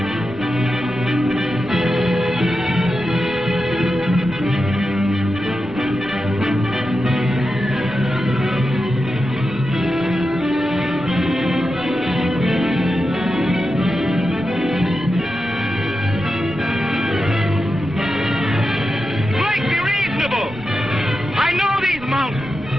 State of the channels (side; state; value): right; noise; rumble, 20 dB below the sound